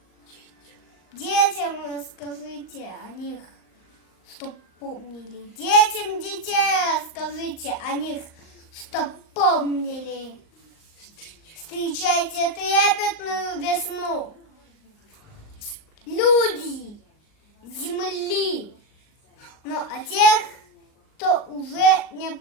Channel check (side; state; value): right; late; 39 ms